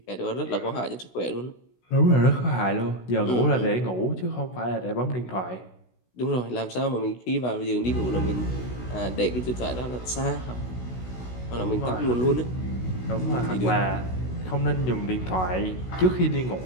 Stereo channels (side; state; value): right; late; 16 ms